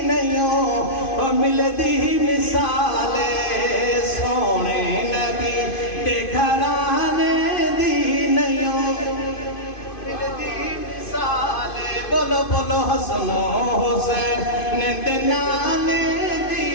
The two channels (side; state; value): right; late; 2.5 ms